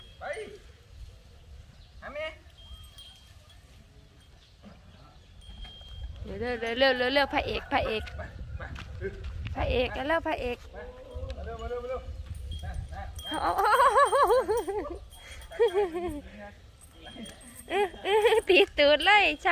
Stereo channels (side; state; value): both; identical; correlation 1.00